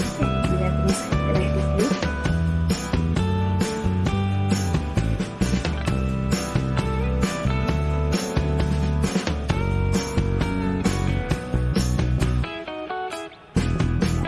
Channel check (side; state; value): both; identical; correlation 1.00